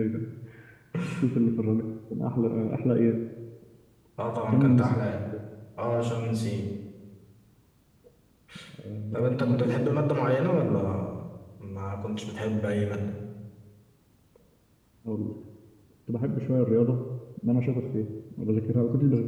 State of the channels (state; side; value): identical; both; correlation 1.00